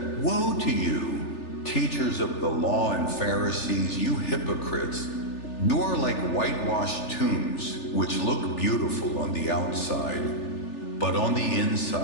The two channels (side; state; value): right; late; 3.4 ms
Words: "Woe to you, teachers of the law and Pharisees, you hypocrites! You are like whitewashed tombs, which look beautiful on the outside, but on the